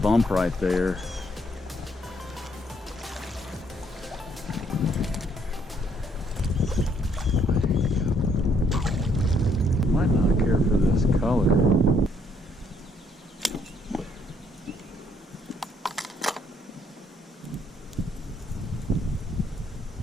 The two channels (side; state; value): both; normal; correlation 0.69